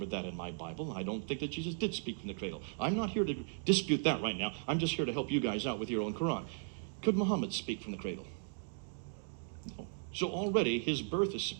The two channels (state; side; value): silent; left; digital silence